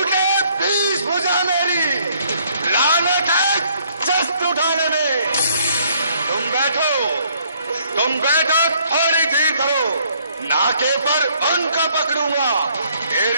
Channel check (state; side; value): inverted; both; correlation -0.65